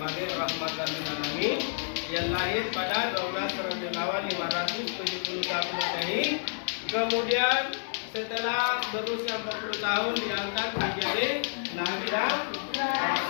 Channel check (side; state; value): right; silent; digital silence